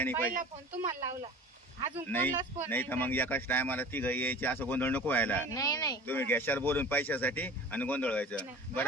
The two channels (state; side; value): normal; both; correlation 0.40